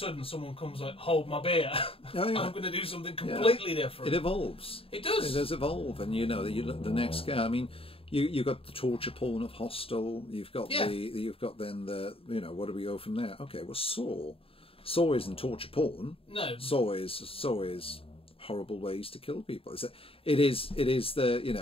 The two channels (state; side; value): late; right; 0.27 ms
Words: someone comes like, "Hold my beer! I'm going to do something completely different." It evolves. It does. It does evolve, and the next guy. I mean, you got the torture porn of Hostel. You've got where do we go from there? Okay, well, Saw isn't torture porn. No. Saw is horrible ways to kill people. It is